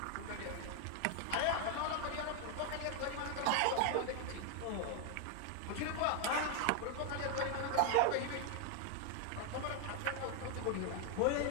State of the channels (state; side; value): different; both; correlation 0.01